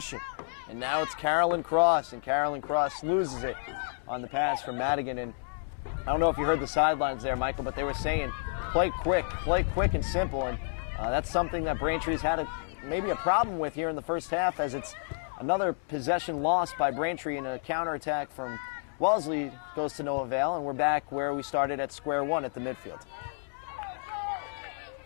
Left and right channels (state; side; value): silent; right; 58 dB below the other